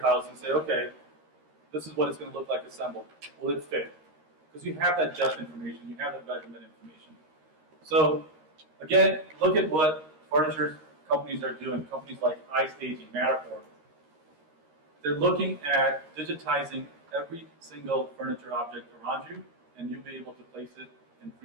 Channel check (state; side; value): late; left; 13 ms